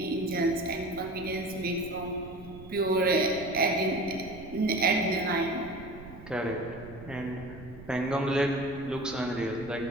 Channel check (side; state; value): right; noise; rumble, 16 dB below the sound